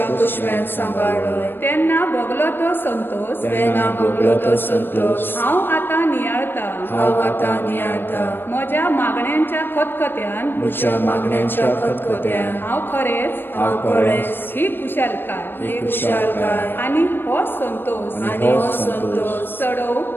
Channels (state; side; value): late; right; 0.098 ms